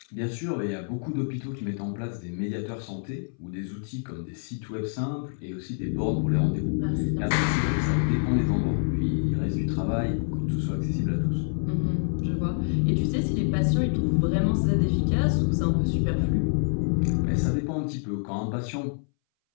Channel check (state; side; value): silent; right; 60 dB below the other